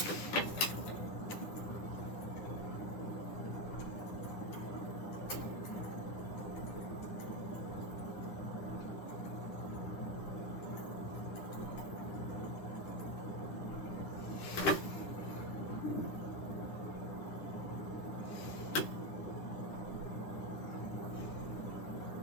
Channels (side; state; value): right; late; 9.9 ms